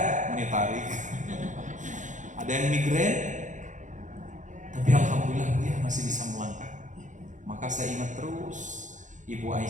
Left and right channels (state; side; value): late; left; 0.36 ms